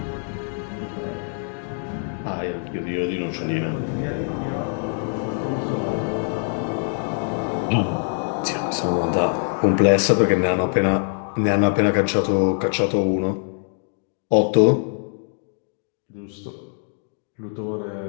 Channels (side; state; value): right; silent; 63 dB below the other